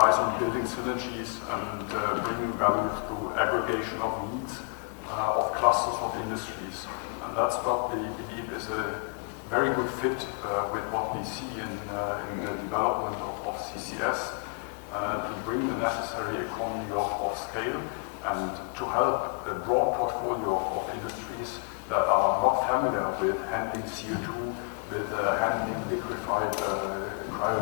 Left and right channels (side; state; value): right; quieter; 38.3 dB